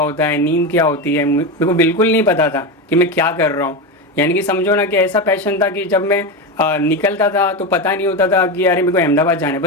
है, नींद क्या होती है, मेरे को बिल्कुल नहीं पता था कि मैं क्या कर रहा हूँ। यानी कि समझो ना कि ऐसा पैशन था कि जब मैं निकलता था तो पता नहीं होता था कि यार मेरे को अहमदाबाद जाना है,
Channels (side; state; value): both; normal; correlation 0.16